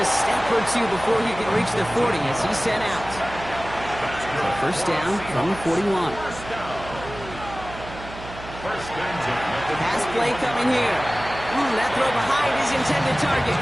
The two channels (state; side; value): noise; right; hum, 13 dB below the sound